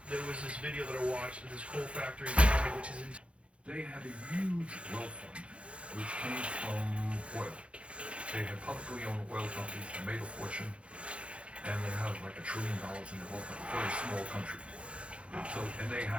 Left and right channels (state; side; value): late; left; 0.060 ms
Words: There was this video that I watched of this coal factory in China, which is in. They had a huge wealth fund, which came from oil. They had publicly owned oil companies that made a fortune, and they have like $1 trillion in the wealth fund. Very small country. So, and they